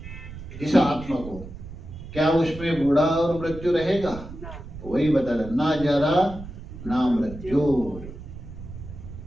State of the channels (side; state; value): right; noise; rumble, 12 dB below the sound